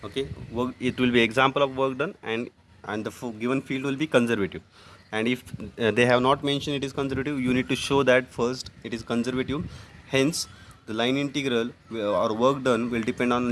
Okay, it will be example of work done, and the given field will be conservative. And if they have not mentioned it is conservative, you need to show that first it is conservative. Hence the line integral or work done will depend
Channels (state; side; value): identical; both; correlation 1.00